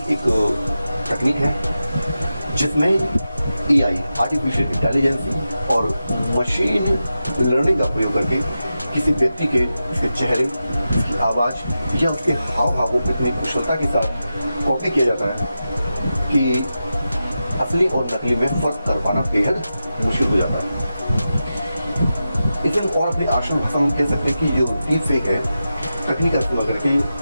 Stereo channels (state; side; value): inverted; both; correlation -0.91